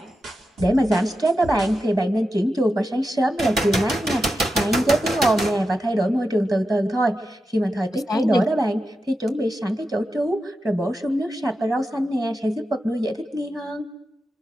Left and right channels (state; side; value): normal; both; correlation 0.89